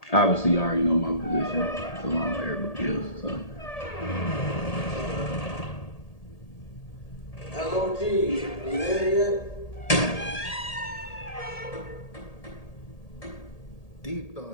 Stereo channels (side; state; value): right; late; 1.8 ms